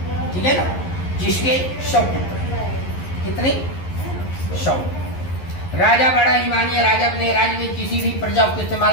ठीक है ना, जिसके 100 पुत्र, कितने 100। राजा बड़ा ईमानी है, राजा अपने राज्य में किसी भी प्रजा को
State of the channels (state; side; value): late; right; 11 ms